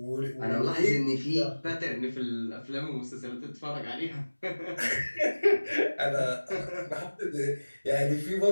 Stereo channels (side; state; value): both; inverted; correlation -1.00